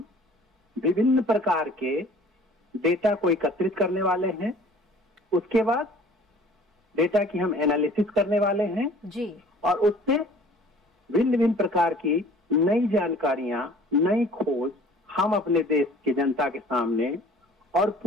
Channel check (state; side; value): normal; both; correlation 0.50